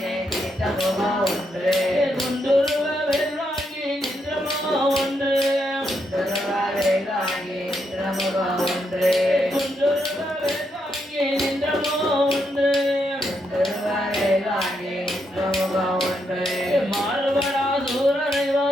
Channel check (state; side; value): normal; both; correlation 0.80